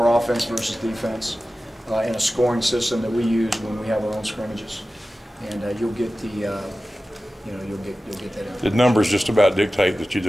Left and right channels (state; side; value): normal; both; correlation 0.95